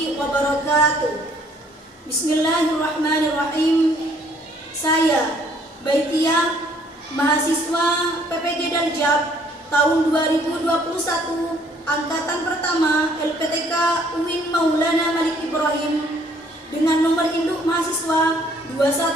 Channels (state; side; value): normal; both; correlation 0.62